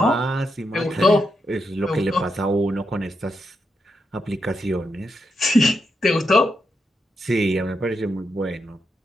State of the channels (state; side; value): normal; both; correlation 0.83